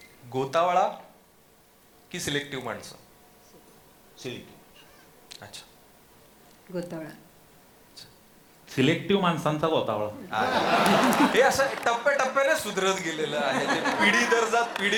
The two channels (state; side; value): identical; both; correlation 1.00